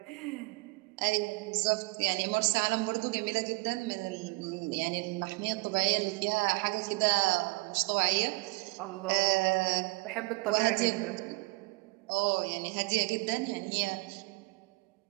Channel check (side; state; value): left; quieter; 26.3 dB